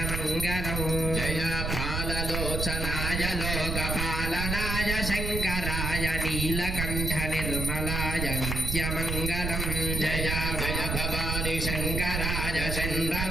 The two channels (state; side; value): noise; right; rumble, 1 dB below the sound